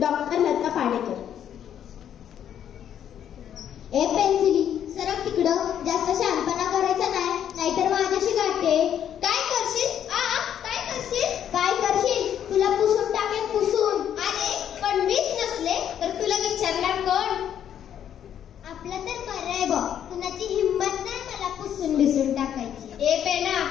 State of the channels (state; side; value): quieter; right; 9.7 dB